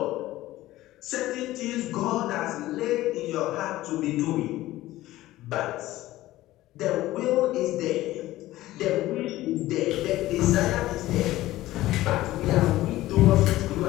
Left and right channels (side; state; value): right; quieter; 16.2 dB